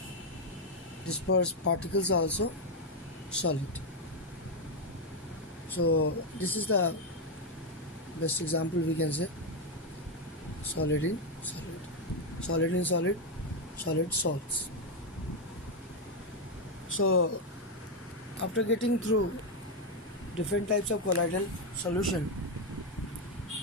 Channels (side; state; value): both; normal; correlation 0.04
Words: dispersed particles are also solid. So this is the best example we can say. Solid in solid, solid in solid, solid salts. So after getting through different types of colloidal solution,